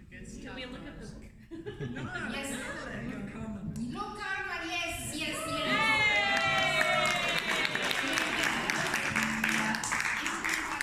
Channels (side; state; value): both; identical; correlation 1.00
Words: we look at the book? Yes. Luke Carman. Luke Carman, yes, yes, yes.